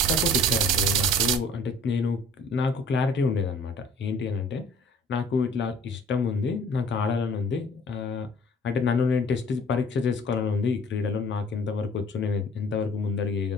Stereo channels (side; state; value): both; normal; correlation 0.51